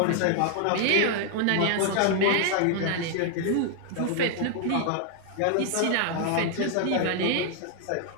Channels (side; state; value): both; different; correlation 0.00